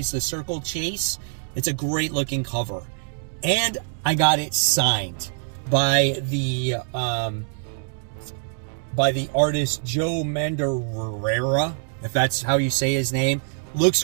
the Circle Chase. It's a great looking cover. And I got it signed by the artist Joe Mandarrera, if that's how you say his name. Looks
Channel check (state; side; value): silent; left; 61 dB below the other